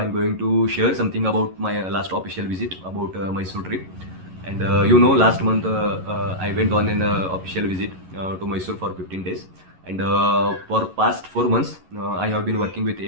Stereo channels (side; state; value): left; late; 11 ms